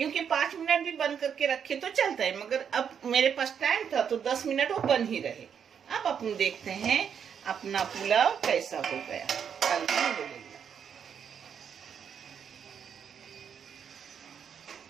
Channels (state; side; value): quieter; left; 7.7 dB